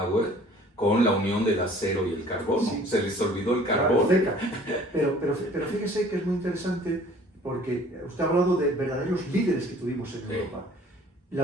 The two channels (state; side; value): normal; both; correlation 0.52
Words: con la unión del acero y el carbón, sí, se les olvidó el carbón. Pero fíjese que es muy interesante porque usted ha hablado de verdaderos líderes que tuvimos en Europa.